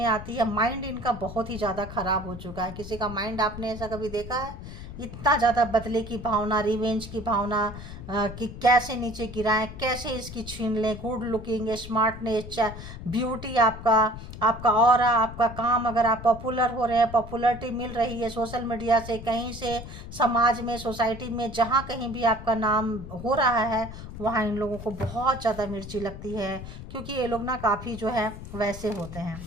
आती है। माइंड इनका बहुत ही ज़्यादा ख़राब हो चुका है। किसी का माइंड आपने ऐसा कभी देखा है? इतना ज़्यादा बदले की भावना, रिवेंज की भावना, कि कैसे नीचे गिराएं, कैसे इसकी छीन लें। गुड लुकिंग, स्मार्टनेस, ब्यूटी, आपका ऑरा, आपका काम, अगर आप पॉपुलर हो रहे हैं, पॉपुलरिटी मिल रही है सोशल मीडिया से, कहीं से, समाज में, सोसाइटी में, जहाँ कहीं भी आपका नाम हो रहा है वहाँ इन लोगों को बहुत ज़्यादा मिर्ची लगती है। क्योंकि ये लोग ना काफ़ी जो है वैसे होते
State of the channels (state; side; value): noise; left; rumble, 12 dB below the sound